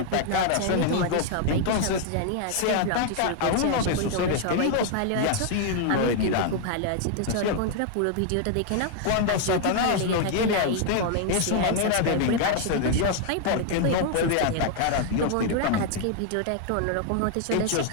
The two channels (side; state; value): both; different; correlation 0.00